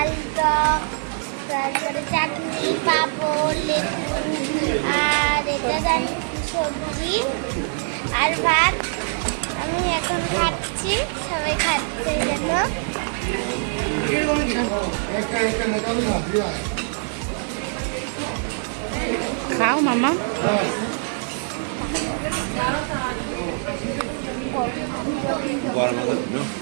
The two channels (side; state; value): left; silent; 57 dB below the other